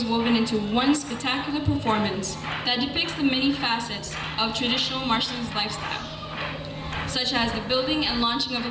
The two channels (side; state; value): both; identical; correlation 1.00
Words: woven into one spectacular performance that depicts the many facets of traditional Marshallese lifestyle, such as the building and launching of